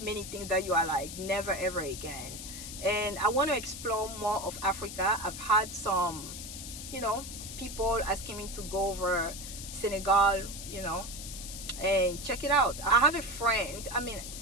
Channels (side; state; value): left; noise; hiss, 9 dB below the sound